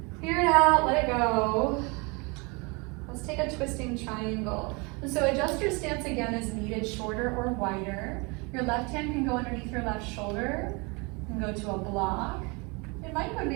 Clear it out, let it go. Let's take a twisting triangle. So adjust your stance again as needed, shorter or wider. Your left hand can go underneath your left shoulder and go to a block. It might go to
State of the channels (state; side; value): quieter; left; 29.0 dB